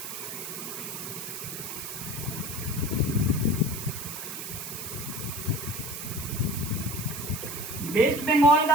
वेस्ट बंगाल का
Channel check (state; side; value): noise; right; hiss, 8 dB below the sound